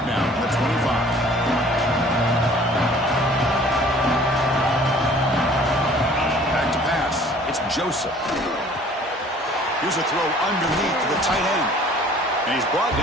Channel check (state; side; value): normal; both; correlation 0.52